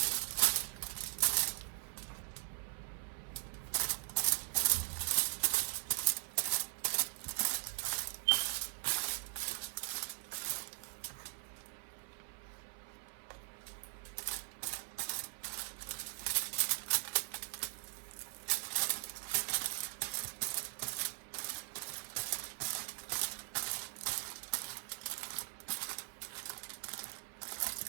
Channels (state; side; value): silent; left; 51 dB below the other